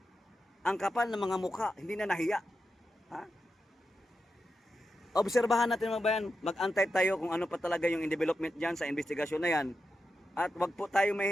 Ang kapal ng mga mukha, hindi na nahiya. Ha? Obserbahan natin mga bayan, mag-antay tayo kung ano pa talaga yung development dyan sa investigasyon na yan. At wag po tayo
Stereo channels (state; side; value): normal; both; correlation 0.89